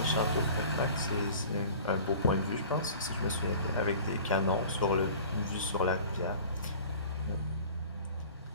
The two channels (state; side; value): inverted; both; correlation -0.43